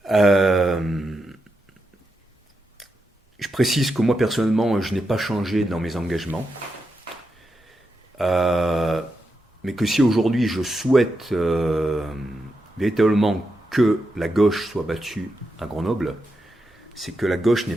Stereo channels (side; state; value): both; normal; correlation 0.86